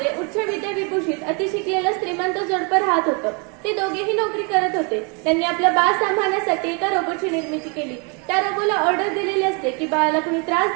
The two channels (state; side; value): quieter; left; 33.5 dB